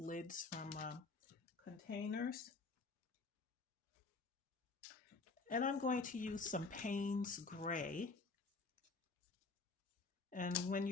from containers. And I'm going to use some Payne's Gray. And when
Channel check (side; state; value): right; quieter; 3.9 dB